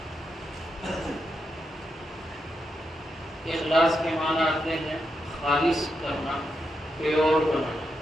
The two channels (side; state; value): both; normal; correlation 0.84